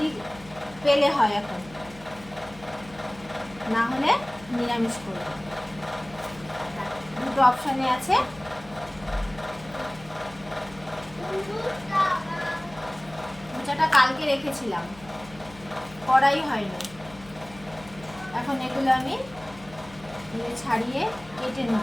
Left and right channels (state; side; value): noise; left; hum, 20 dB below the sound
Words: পেলে হয় এখন, না হলে নিরামিষ করব। দুটো অপশানে আছে। মোচাটা কালকে রেখেছিলাম, করাই হয়নি। এখন এগুলো আমি ছাড়িয়ে কেটে